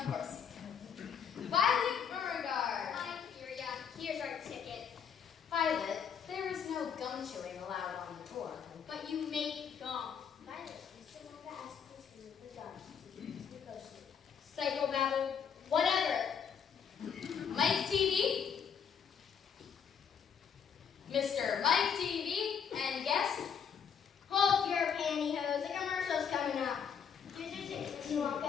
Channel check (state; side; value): quieter; right; 7.3 dB